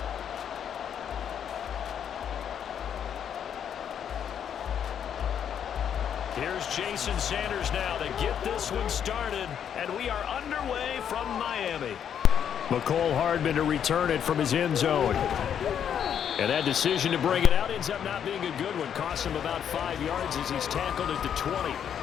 Here's Jason Sanders now to get this one started. And we are underway from Miami. McCole Hardman to return it from his end zone. And that decision to bring it out ends up not being a good one. Costs him about 5 yards as he's tackled at the 20.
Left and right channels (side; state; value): right; quieter; 8.7 dB